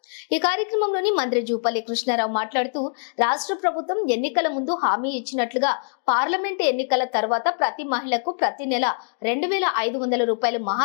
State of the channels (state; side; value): silent; right; digital silence